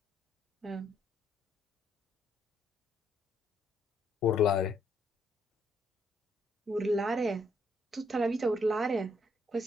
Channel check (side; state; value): both; normal; correlation 0.72